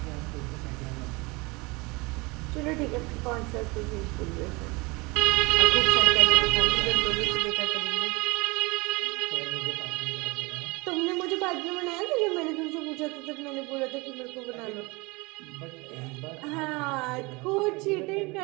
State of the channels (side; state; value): left; quieter; 25.5 dB